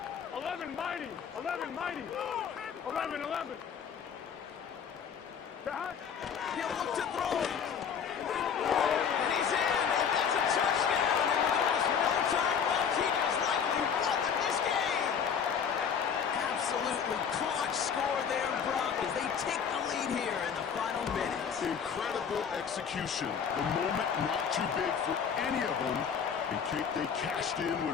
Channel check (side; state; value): right; quieter; 7.2 dB